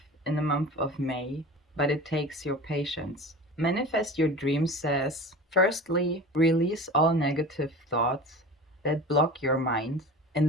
in the month of May, but it takes your patience. Manifest Your Dream says, firstly, release all negative thoughts that block your mind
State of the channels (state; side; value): normal; both; correlation 0.36